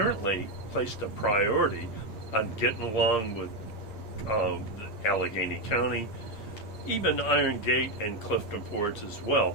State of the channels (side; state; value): right; late; 8.6 ms